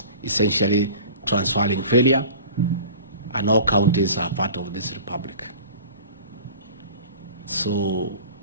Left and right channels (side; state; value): both; inverted; correlation -0.41